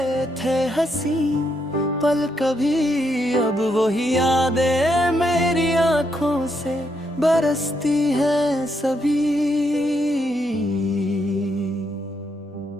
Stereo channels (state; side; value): normal; both; correlation 0.78